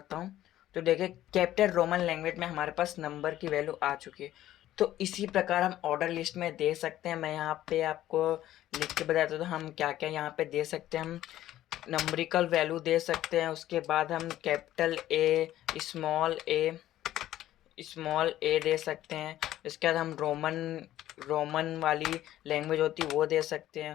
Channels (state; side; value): quieter; right; 13.5 dB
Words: हूँ तो देखिए कैपिटल रोमन लैंग्वेज में हमारे पास नंबर की वैल्यू आ चुकी है। तो इसी प्रकार हम ऑर्डर लिस्ट में दे सकते हैं। मैं यहाँ पे आपको लिख के बताता हूँ तो हम क्या क्या यहाँ पे दे सकते हैं। हम नंबरिकल वैल्यू दे सकते हैं, उसके बाद हम कैपिटल ए, स्मॉल ए दे सकते हैं। इसके बाद हम रोमन वाली लैंग्वेज होती है वो दे सकते